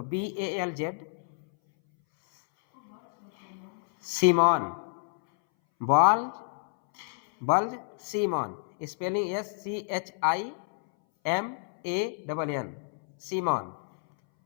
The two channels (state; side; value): silent; right; 59 dB below the other